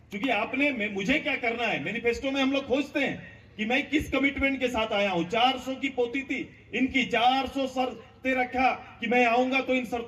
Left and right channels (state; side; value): identical; both; correlation 1.00